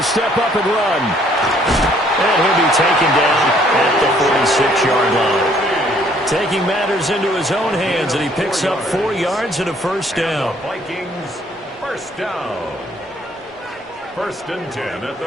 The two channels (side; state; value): both; normal; correlation 0.62